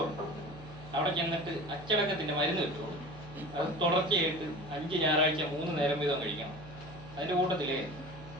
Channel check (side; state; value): right; noise; hum, 16 dB below the sound